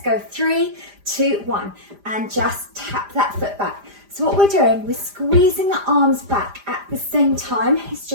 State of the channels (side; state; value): left; late; 5.0 ms